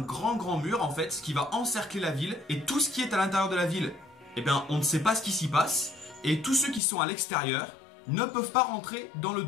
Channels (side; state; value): right; drops out; at 6.8 s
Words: grand mur en fait, qui va encercler la ville, et tout ce qui est à l'intérieur de la ville, eh bien on ne sait pas ce qui s'y passe, et tous ceux qui sont à l'extérieur ne peuvent pas rentrer dans le